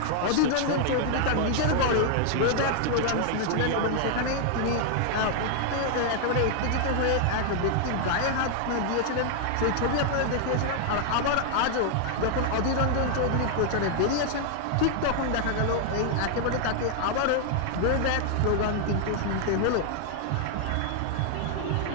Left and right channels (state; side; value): different; both; correlation 0.00